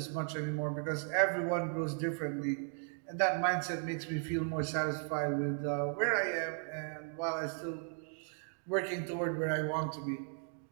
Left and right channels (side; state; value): left; silent; 54 dB below the other